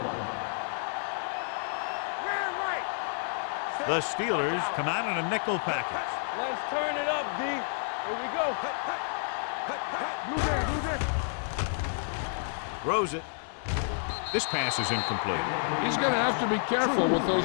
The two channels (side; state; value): right; silent; digital silence